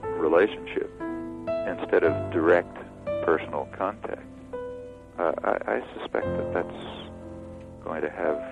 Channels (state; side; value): identical; both; correlation 1.00